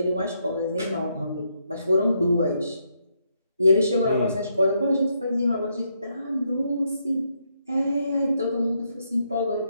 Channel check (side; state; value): both; inverted; correlation -0.77